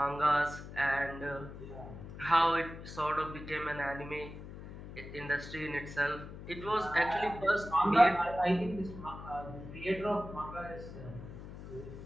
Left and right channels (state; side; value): noise; left; hum, 12 dB below the sound